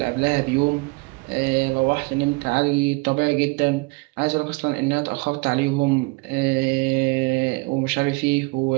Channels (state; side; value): quieter; left; 27.5 dB